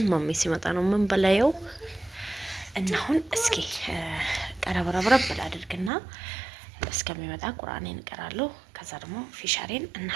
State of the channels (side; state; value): left; drops out; at 5.9 s